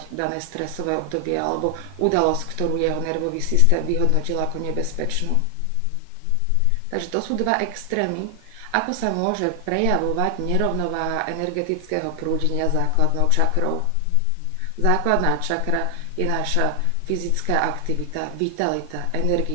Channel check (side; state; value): both; different; correlation 0.00